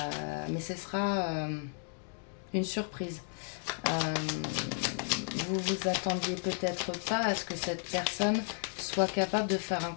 Mais ce sera une surprise. vous vous attendiez peut-être pas à ce que cette personne soit capable de faire un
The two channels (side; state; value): right; silent; 55 dB below the other